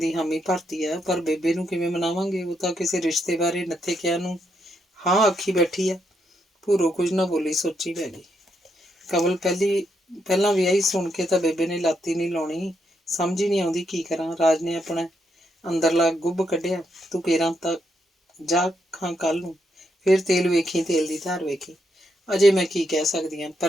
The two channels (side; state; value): both; normal; correlation 0.79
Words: ਹਾਮੀ ਭਰਤੀ ਆ, ਪਰ ਬੇਬੇ ਨੂੰ ਕਿਵੇਂ ਮਨਾਵਾਂਗੇ? ਉਹ ਤਾਂ ਕਿਸੇ ਰਿਸ਼ਤੇ ਬਾਰੇ ਨੱਥੇ ਕਿਹਾ ਨੂੰ ਹਾਂ ਆਖੀ ਬੈਠੀ ਆ। ਭੂਰੋ ਕੁਝ ਨਾ ਬੋਲੀ, ਸੋਚੀ ਪੈ ਗਈ। ਕਮਲ ਪਹਿਲਾਂ ਵਿਆਹੀ ਸੁਣ ਕੇ ਤਾਂ ਬੇਬੇ ਨੇ ਲਾਤੀ ਨਹੀਂ ਲਾਉਣੀ, ਸਮਝ ਹੀ ਨਹੀਂ ਆਉਂਦੀ ਕੀ ਕਰਾਂ। ਰਾਜ ਨੇ ਆਪਣਾ ਅੰਦਰਲਾ ਗੁੱਬ ਕੱਢਿਆ। ਤੂੰ ਕੇਰਾਂ ਤਾਂ ਜਾ ਖਾਂ ਕੱਲ ਨੂੰ, ਫਿਰ ਤੇਲ ਵੇਖੀ, ਤੇਲ ਦੀ ਧਾਰ ਵੇਖੀ। ਅਜੇ ਮੈਂ ਕੀ ਕਹਿ ਸਕਦੀ ਹਾਂ,